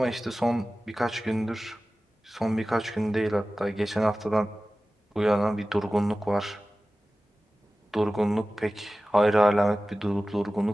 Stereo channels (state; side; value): normal; both; correlation 0.96